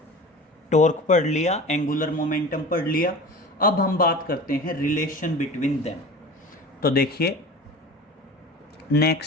टॉर्क पढ़ लिया, एंगुलर मोमेंटम पढ़ लिया, अब हम बात करते हैं रिलेशन बिटवीन देम। तो देखिए,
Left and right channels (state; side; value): normal; both; correlation 0.36